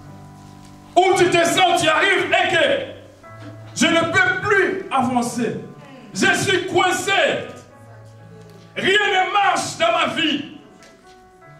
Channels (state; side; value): identical; both; correlation 1.00